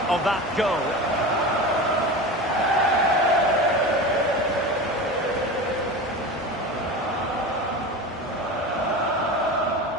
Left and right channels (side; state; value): both; normal; correlation 0.29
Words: of that goal.